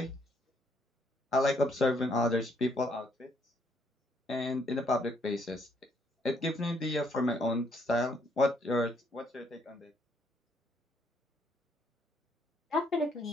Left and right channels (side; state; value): both; normal; correlation 0.70